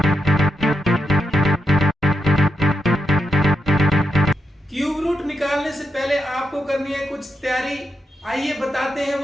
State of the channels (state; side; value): normal; both; correlation 0.85